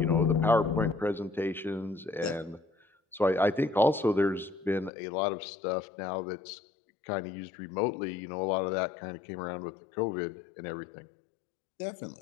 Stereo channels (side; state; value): right; drops out; at 4.9 s